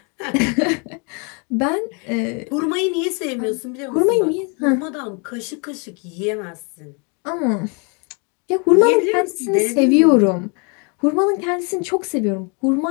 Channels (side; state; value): right; quieter; 34.6 dB